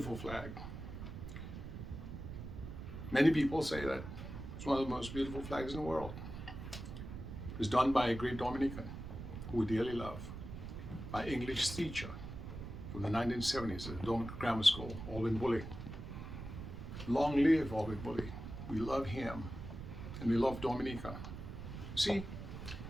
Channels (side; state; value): right; noise; rumble, 9 dB below the sound